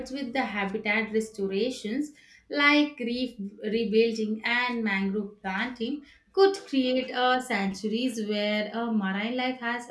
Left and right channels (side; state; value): both; identical; correlation 1.00